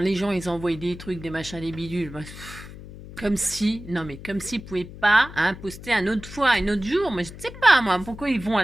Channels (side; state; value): left; noise; hum, 14 dB below the sound